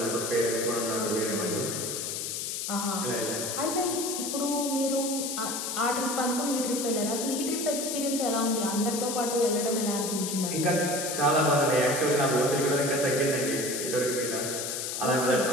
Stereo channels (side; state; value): left; noise; hiss, 3 dB below the sound